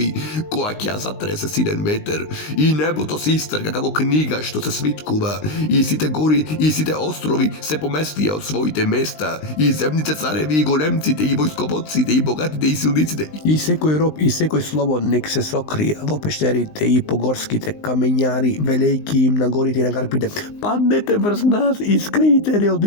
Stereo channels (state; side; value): late; right; 19 ms